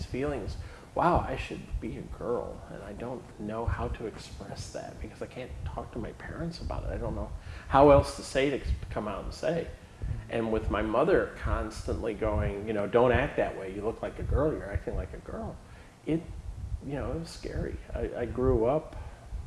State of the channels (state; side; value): identical; both; correlation 1.00